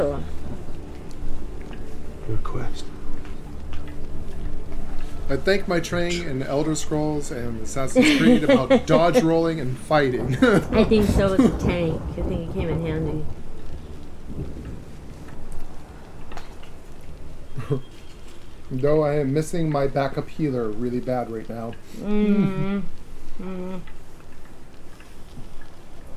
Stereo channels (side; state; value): both; identical; correlation 1.00